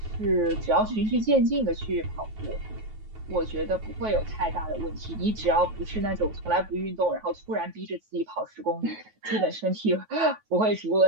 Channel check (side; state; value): left; late; 9.3 ms